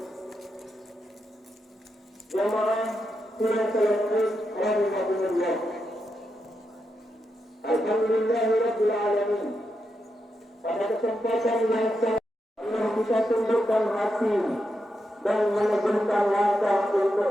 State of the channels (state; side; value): normal; both; correlation 0.85